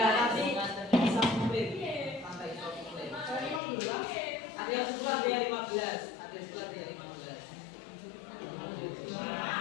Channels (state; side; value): drops out; right; at 3.6 s